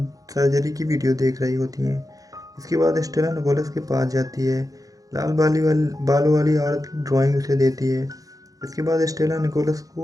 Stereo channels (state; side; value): late; left; 0.17 ms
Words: सर्जरी की वीडियो देख रही होती हैं। इसके बाद स्टेला निकोलस के पास जाती है। लाल बालों वाली औरत की ड्राइंग उसे देती है। इसके बाद स्टेला निकोलस